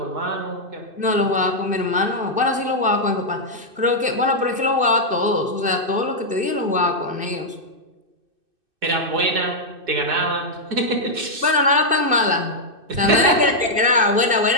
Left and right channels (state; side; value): late; left; 2.6 ms